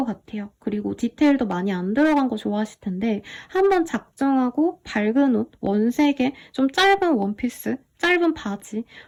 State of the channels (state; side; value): identical; both; correlation 1.00